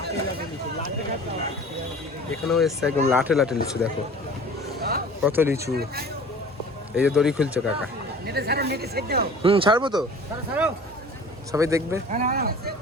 এখানেও এসছে একদম লাটে লিচু, দেখো কত লিচু। এই যে দড়ি খুলছে কাকা। ছাড়বো তো, সবাই দেখবে।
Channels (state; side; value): normal; both; correlation 0.44